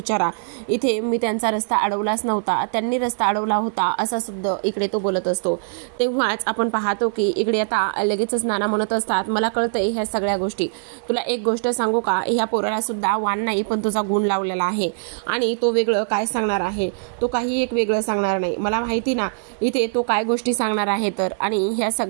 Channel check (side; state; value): left; silent; 62 dB below the other